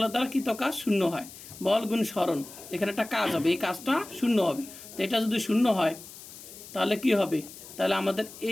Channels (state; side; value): noise; left; hiss, 16 dB below the sound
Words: দ্বারা কৃত কাজ শূন্য হয়। বল গুণ সরণ, এখানে একটা কাজ হবে, এই কাজটা শূন্য হবে। তো এটা যদি শূন্য হয় তাহলে কি হবে? তাহলে আমাদের